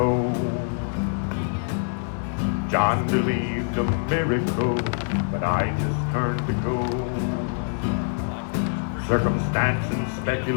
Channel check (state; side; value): silent; right; 62 dB below the other